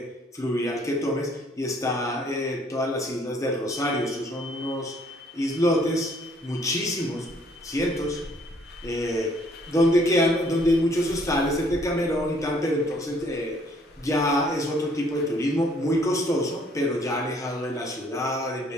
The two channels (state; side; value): normal; both; correlation 0.63